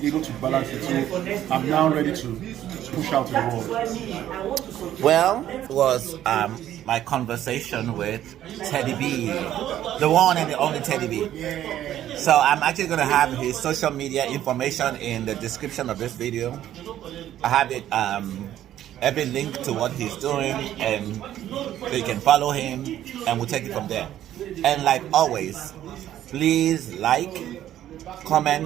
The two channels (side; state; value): left; quieter; 12.0 dB